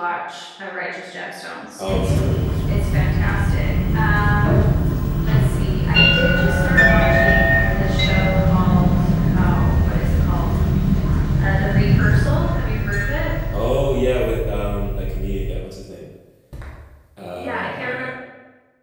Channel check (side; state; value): both; identical; correlation 1.00